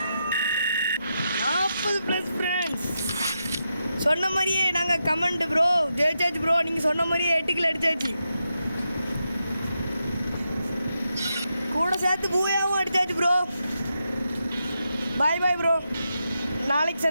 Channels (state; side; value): inverted; both; correlation -0.86